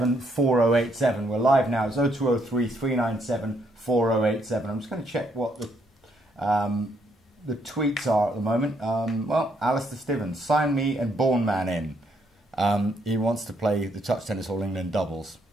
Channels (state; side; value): normal; both; correlation 0.73